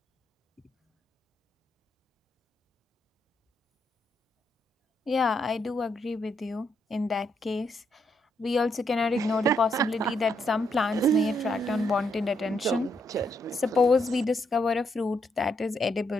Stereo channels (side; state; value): both; normal; correlation 0.77